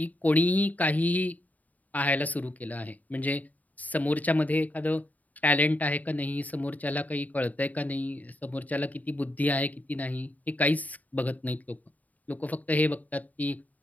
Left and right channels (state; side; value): late; right; 0.076 ms